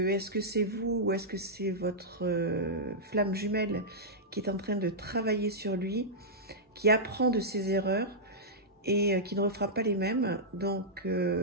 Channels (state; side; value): normal; both; correlation -0.11